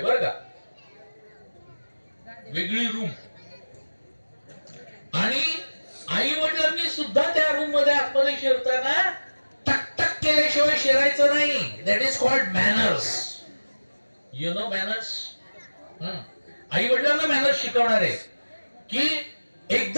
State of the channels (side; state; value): both; inverted; correlation -1.00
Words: बरं का, वेगळी रूम. आणि आई वडिलांनी सुद्धा त्या रूम मध्ये आतमध्ये शिरताना टक टक केल्याशिवाय शिरायचं नाही. That is called manners. You know manners. आई वडिलांना मॅनर्स शिकवणार आहे की